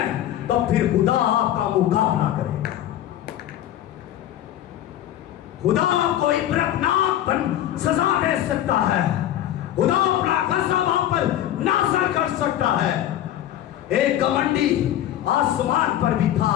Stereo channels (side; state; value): right; quieter; 12.2 dB